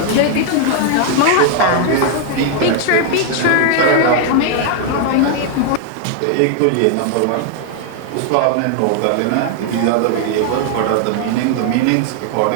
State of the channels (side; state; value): both; different; correlation 0.00